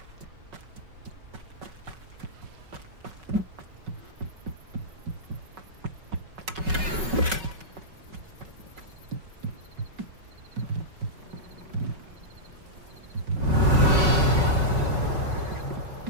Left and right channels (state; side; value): late; left; 5.4 ms